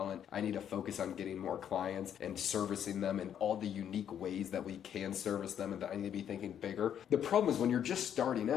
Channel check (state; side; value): quieter; right; 9.3 dB